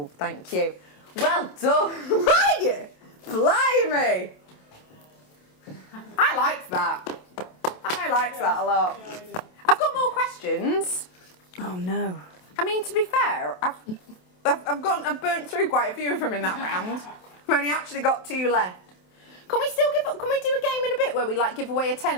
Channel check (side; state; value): right; late; 27 ms